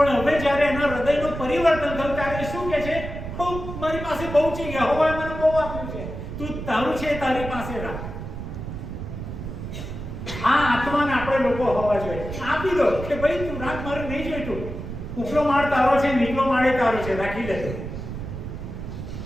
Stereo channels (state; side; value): noise; right; rumble, 8 dB below the sound